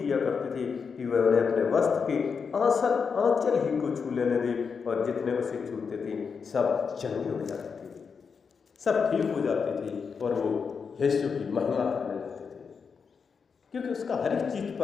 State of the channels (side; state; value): right; quieter; 5.8 dB